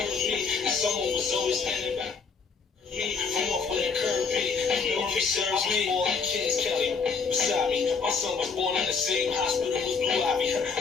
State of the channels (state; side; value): quieter; right; 5.2 dB